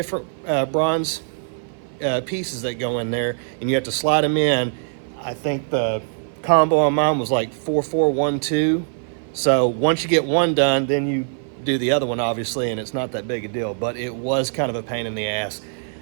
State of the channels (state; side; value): silent; left; 57 dB below the other